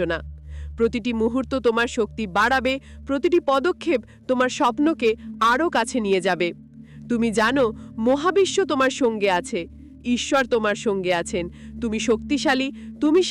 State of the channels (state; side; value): identical; both; correlation 1.00